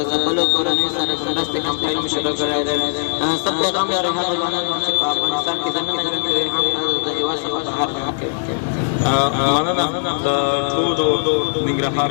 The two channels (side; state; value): right; silent; digital silence